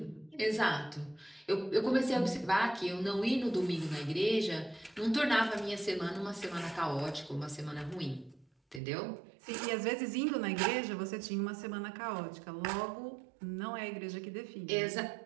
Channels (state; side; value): drops out; left; at 8.8 s